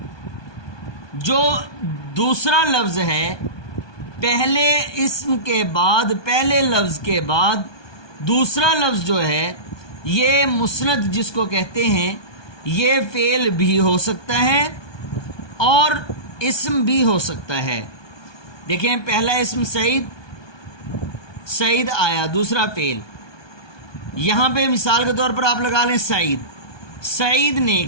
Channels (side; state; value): right; late; 1.2 ms